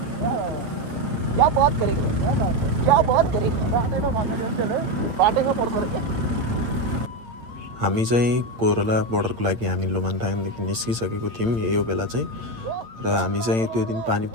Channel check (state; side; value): late; left; 8.7 ms